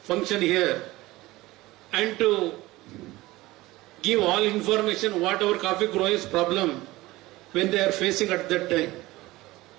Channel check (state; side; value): quieter; left; 19.0 dB